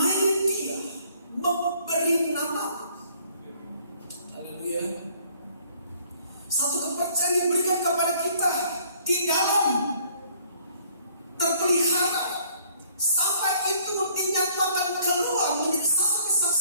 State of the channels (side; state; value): both; inverted; correlation -0.60